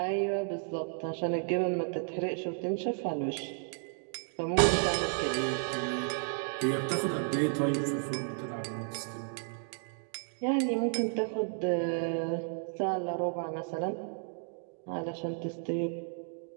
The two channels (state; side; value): silent; left; 56 dB below the other